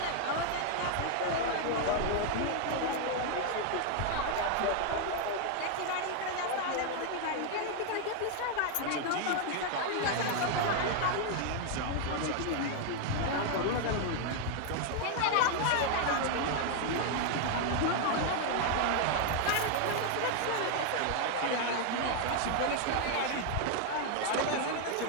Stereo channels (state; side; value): different; both; correlation 0.00